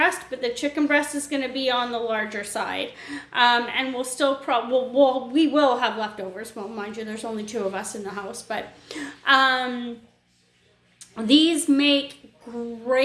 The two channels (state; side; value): identical; both; correlation 1.00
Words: but the chicken breast is going to be on the larger side. And we'll still we will have leftovers. Well, mind you, there's only 2 of us in the house, but these make